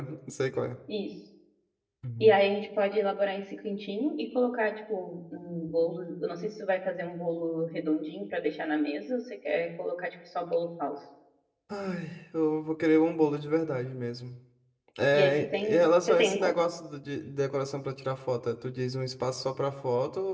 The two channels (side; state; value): both; identical; correlation 1.00